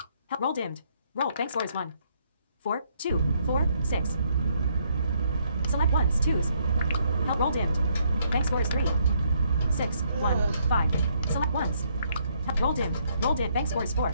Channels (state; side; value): inverted; both; correlation -0.71